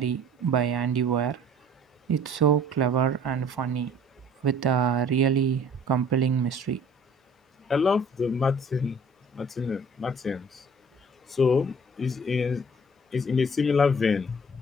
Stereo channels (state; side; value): normal; both; correlation 0.52